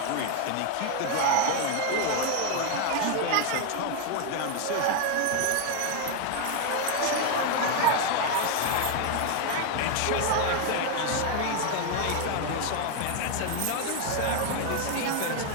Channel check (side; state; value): both; different; correlation 0.01